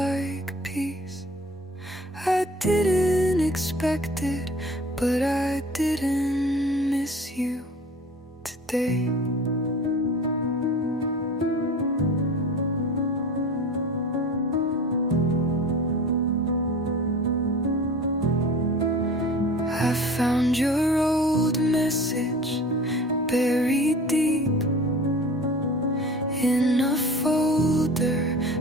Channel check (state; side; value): normal; both; correlation 0.40